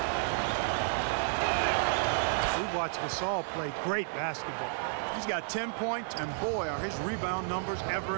We watched Gasol play great basketball. He's got 10 points, and boy, are his rebound numbers ever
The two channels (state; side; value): silent; left; digital silence